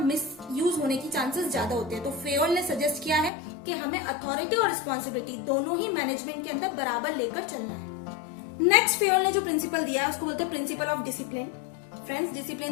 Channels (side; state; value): right; drops out; at 3.3 s